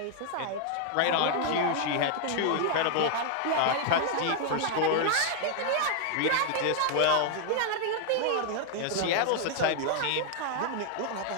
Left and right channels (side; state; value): both; different; correlation 0.00